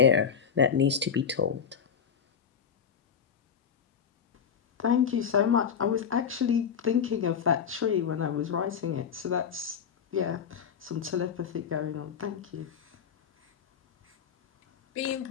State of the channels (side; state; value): right; quieter; 7.2 dB